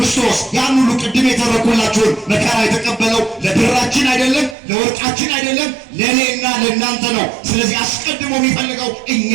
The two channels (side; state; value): left; drops out; at 4.5 s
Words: ያን ሁሉ ቅድም የተረኩላችሁን መከራ የተቀበለው ለብራችን አይደለም፣ ለወርቃችን አይደለም፣ ለእኔና ለእናንተ ነው። ስለዚህ አስቀድሞ የሚፈልገው